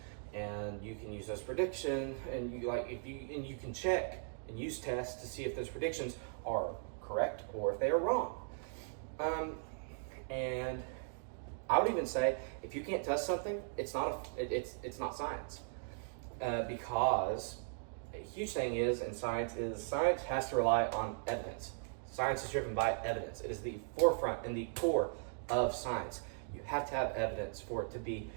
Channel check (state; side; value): silent; left; digital silence